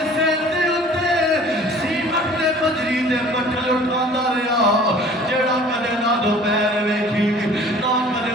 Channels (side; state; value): both; normal; correlation 0.49